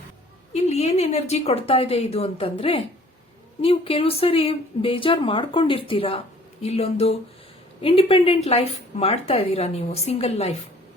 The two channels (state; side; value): normal; both; correlation 0.54